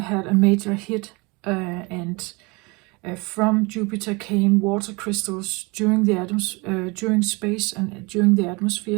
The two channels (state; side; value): quieter; left; 27.1 dB